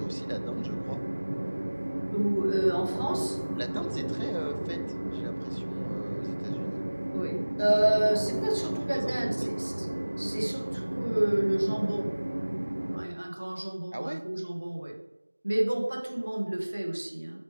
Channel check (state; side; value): inverted; both; correlation -1.00